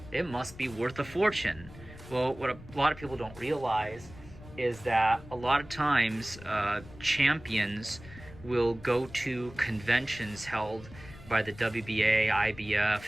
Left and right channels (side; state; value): left; noise; rumble, 18 dB below the sound